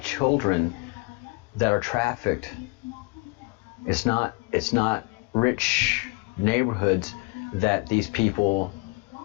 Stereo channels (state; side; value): quieter; right; 26.8 dB